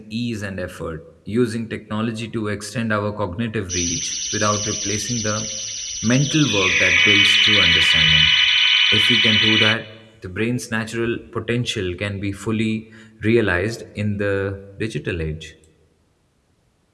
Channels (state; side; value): identical; both; correlation 1.00